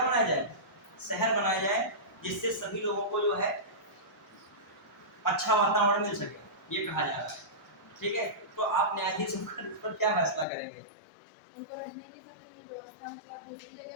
बनाया जाए, शहर बनाया जाए, जिससे सभी लोगों को जो है अच्छा वातावरण मिल सके, ये कहा जा रहा है। ठीक है, तो आप न्यायाधीश पर क्या फैसला करेंगे? उनको रहने की सबकी व्यवस्था मतलब दूसरी जगह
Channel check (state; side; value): drops out; right; at 10.5 s